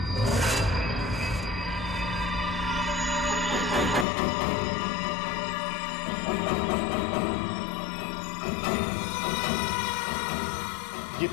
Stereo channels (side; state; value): right; drops out; at 4.0 s